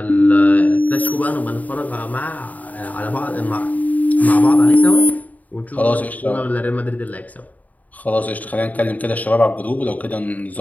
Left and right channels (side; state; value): right; late; 0.074 ms